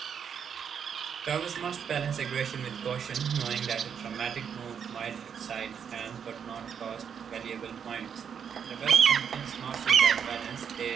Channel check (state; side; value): quieter; left; 7.5 dB